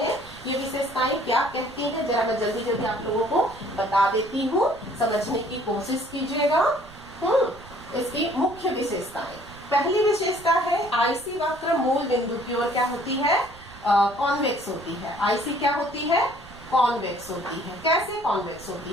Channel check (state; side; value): noise; right; rumble, 20 dB below the sound